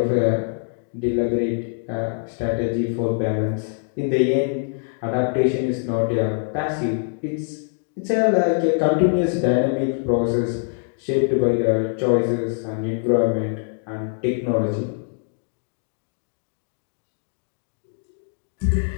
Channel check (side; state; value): right; silent; digital silence